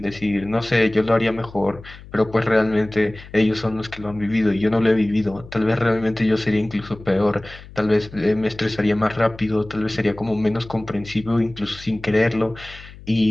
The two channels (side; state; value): left; noise; hum, 18 dB below the sound